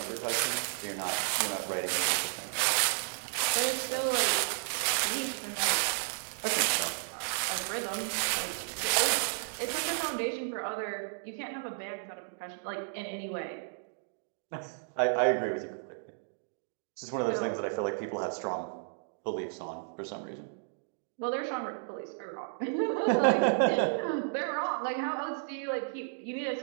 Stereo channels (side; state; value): left; silent; digital silence